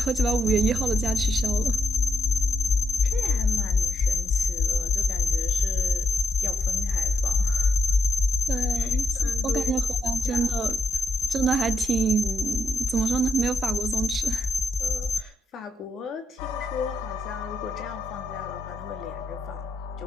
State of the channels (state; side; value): normal; both; correlation 0.82